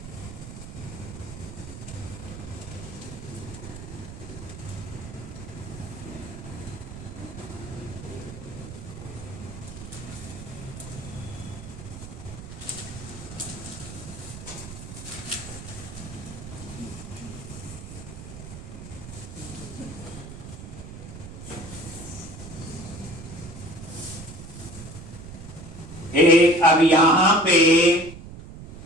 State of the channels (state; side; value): noise; right; rumble, 12 dB below the sound